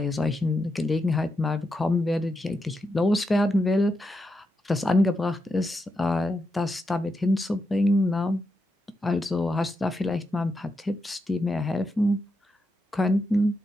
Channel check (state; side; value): normal; both; correlation 0.85